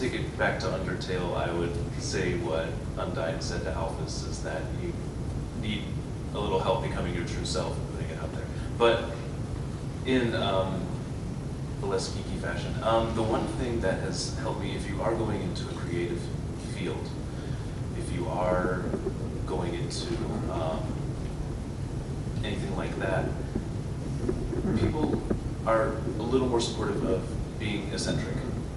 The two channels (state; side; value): identical; both; correlation 1.00